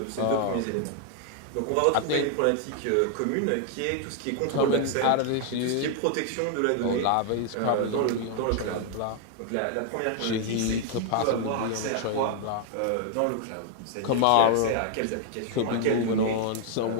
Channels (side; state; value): both; different; correlation 0.00